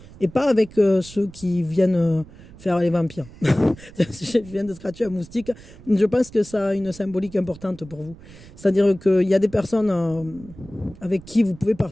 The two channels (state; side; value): noise; right; rumble, 19 dB below the sound